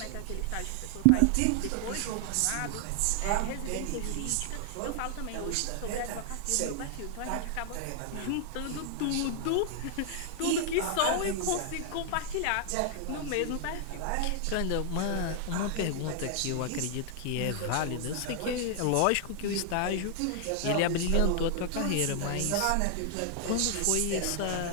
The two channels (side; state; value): both; different; correlation 0.00